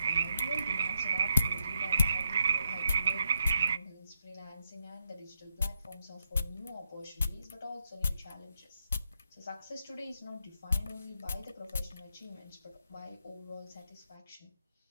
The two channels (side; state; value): both; inverted; correlation -0.81